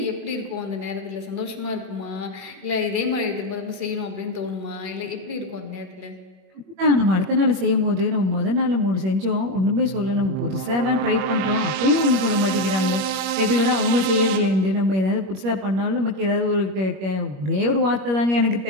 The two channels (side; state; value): left; late; 21 ms